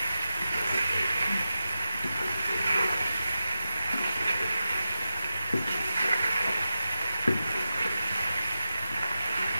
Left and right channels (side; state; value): both; inverted; correlation -0.92